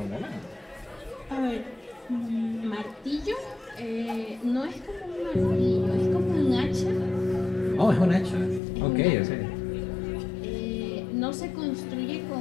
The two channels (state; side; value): drops out; right; at 8.6 s